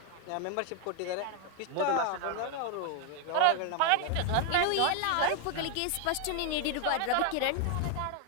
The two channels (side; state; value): both; different; correlation 0.01